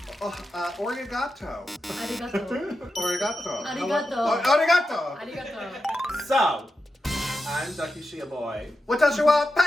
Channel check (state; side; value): normal; both; correlation 0.89